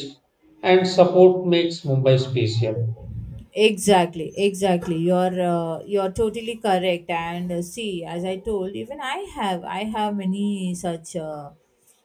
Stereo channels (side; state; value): both; identical; correlation 1.00